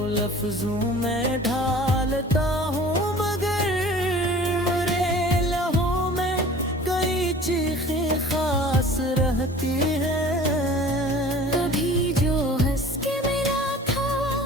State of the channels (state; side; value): normal; both; correlation 0.45